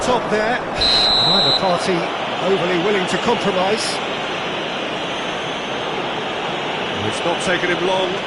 top there. Neither party overly willing to compromise. It's not taken him long,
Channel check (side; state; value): both; identical; correlation 1.00